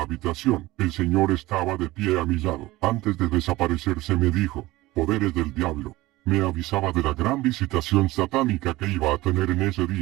habitación. El Señor estaba de pie a mi lado. Antes de desaparecerse me dijo: poderes del diablo. Me avisaba de la gran visitación satánica que iba a tener en ese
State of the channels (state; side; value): quieter; left; 18.8 dB